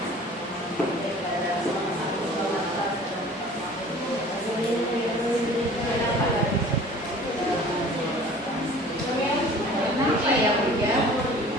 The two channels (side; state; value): both; normal; correlation 0.47